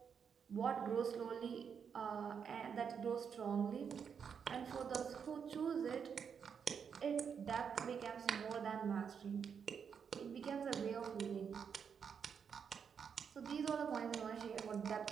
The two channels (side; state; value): left; quieter; 6.9 dB